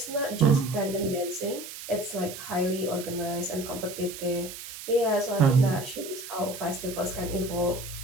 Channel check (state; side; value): noise; right; hiss, 11 dB below the sound